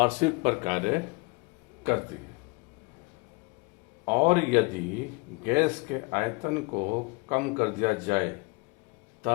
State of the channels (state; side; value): quieter; right; 27.8 dB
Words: पर कार्य करती है और यदि गैस के आयतन को कम कर दिया जाए